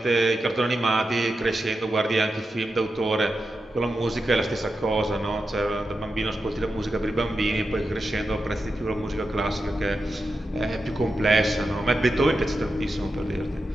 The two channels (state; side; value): normal; both; correlation 0.89